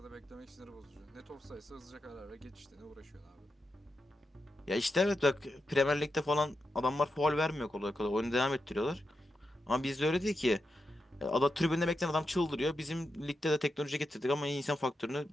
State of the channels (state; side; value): normal; both; correlation 0.88